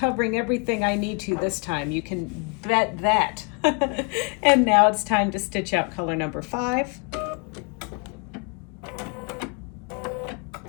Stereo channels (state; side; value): quieter; right; 32.6 dB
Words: everything I need to this time. You can bet that. And now it's time to stitch out color number 5.